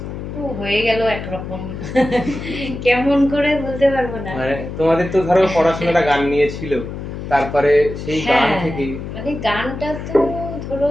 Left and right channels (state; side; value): noise; left; hum, 8 dB below the sound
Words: ও হয়ে গেল একরকম। কেমন করে বলতে পারবো না। মানে তোমাদের তো ধরো পড়াশোনাটা গান নিয়ে ছিল, তারপরে সেই গান হ্যাঁ, থেকে মানে গানটা তো ধরো